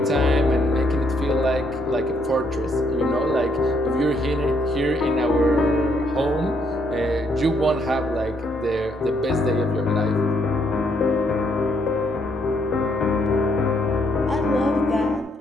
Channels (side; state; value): both; normal; correlation 0.72